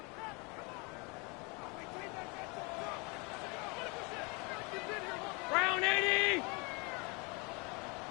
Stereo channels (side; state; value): right; quieter; 29.8 dB